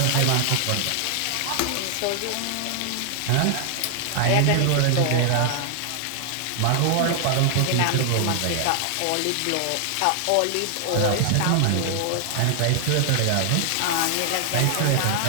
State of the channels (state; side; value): different; both; correlation 0.00